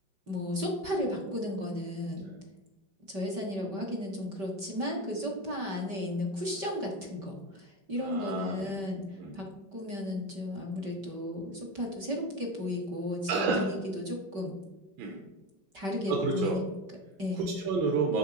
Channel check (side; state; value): left; late; 5.2 ms